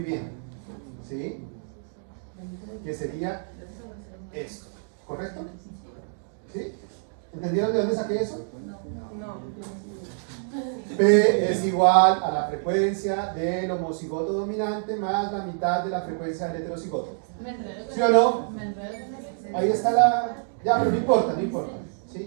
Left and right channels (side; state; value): left; silent; digital silence